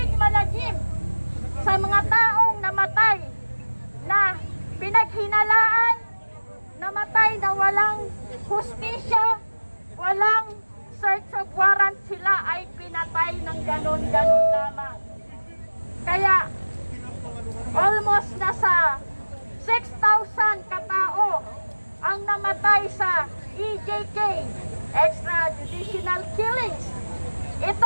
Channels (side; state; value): both; inverted; correlation -1.00